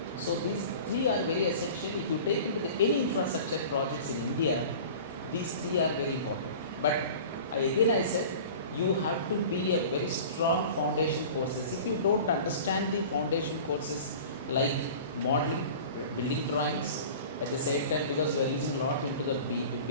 So these three are very essential. If you take into any infrastructure projects in India, these three are very important. But I said, you have to be a very strong foundation courses. If you don't understand the foundation courses like modeling, building drawings, at the same time because you are using a lot into the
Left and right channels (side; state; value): both; inverted; correlation -0.40